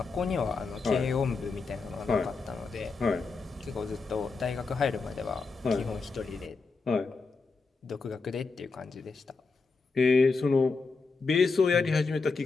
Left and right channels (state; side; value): quieter; right; 4.3 dB